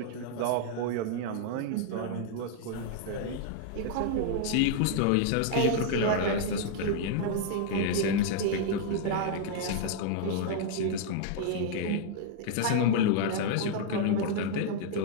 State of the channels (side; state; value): both; different; correlation -0.01